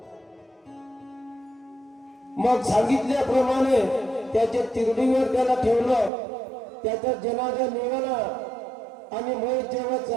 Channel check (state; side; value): drops out; left; at 6.1 s